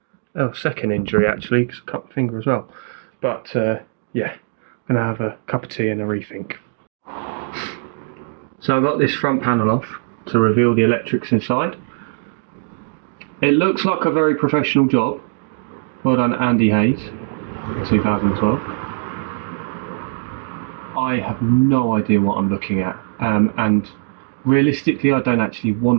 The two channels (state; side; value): silent; left; digital silence